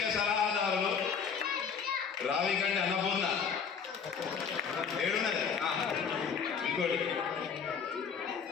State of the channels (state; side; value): quieter; right; 6.4 dB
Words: సలహాదారులు రావికంటి అన్నపూర్ణ, ఏడున్నది ఇంకోటి